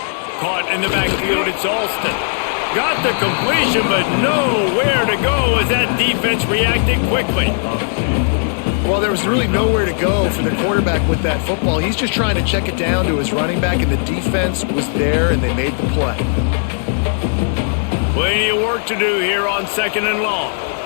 Caught in the backfield. It's Alston. Got the completion, but nowhere to go as that defense reacted quickly. Well, there was really nowhere to go for the quarterback with that football. He's just trying to check it down to his running back, and the defense was there, and they made the play. Plenty of work to do here on 2nd and long.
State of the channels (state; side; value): silent; right; digital silence